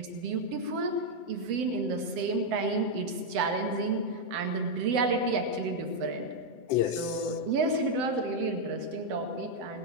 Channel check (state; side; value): late; left; 7.9 ms